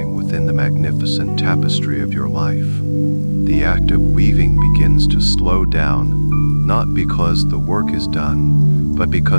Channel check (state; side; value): inverted; both; correlation -1.00